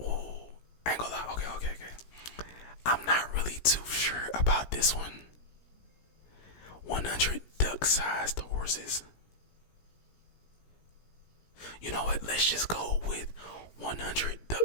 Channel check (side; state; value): right; late; 17 ms